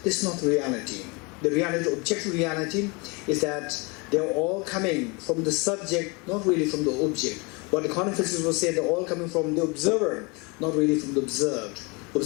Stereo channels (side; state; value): right; quieter; 28.9 dB